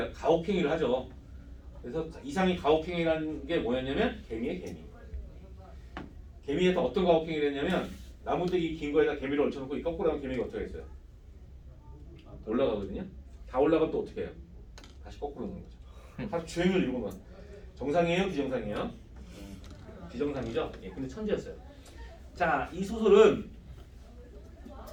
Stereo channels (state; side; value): identical; both; correlation 1.00